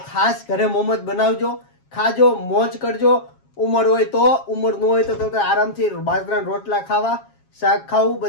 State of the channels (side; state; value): right; late; 7.3 ms